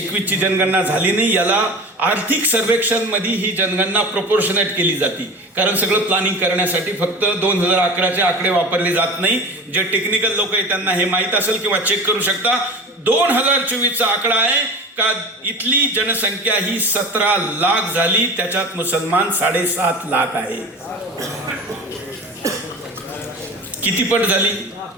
जनगणना झाली नाही. याला आर्थिक सर्वेक्षण मध्ये ही जनगणना प्रोपोर्शनेट केली जाते, कारण सगळं प्लॅनिंग करण्यासाठी फक्त 2011चे आकडे वापरले जात नाही. जे टेक्निकल लोक आहेत त्यांना हे माहीत असेल किंवा चेक करू शकता. 2024चा आकडा आहे का इथली जनसंख्या ही 17 लाख झाली, त्याच्यात मुसलमान 7.5 लाख आहे. किती पट झाली?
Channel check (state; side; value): normal; both; correlation 0.33